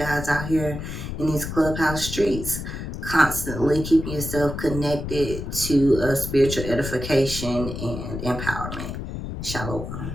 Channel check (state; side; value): noise; left; rumble, 7 dB below the sound